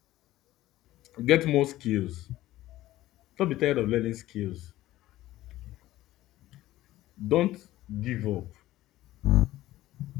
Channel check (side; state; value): right; quieter; 15.6 dB